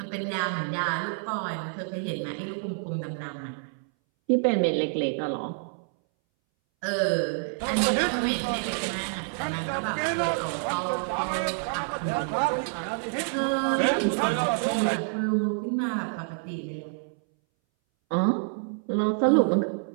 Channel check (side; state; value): left; silent; 60 dB below the other